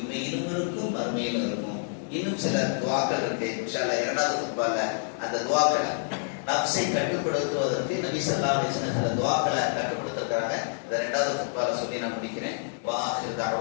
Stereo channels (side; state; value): right; silent; digital silence